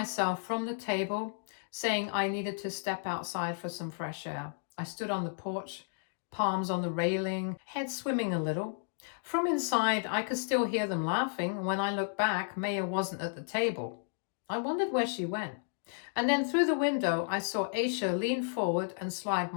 from the table, saying I needed to step outside for some fresh air. I stood on the porch, palms on the railing, head swimming a little. From inside, I could still hear them laughing, and when I looked back, Maya wasn't at the table. I wondered where she went. And then through the window, I saw Aisha lean forward and slide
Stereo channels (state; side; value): silent; right; digital silence